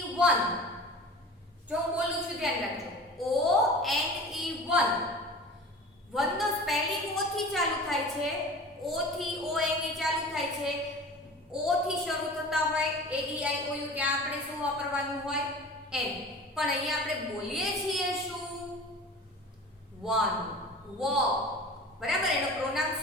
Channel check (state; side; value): normal; both; correlation 0.38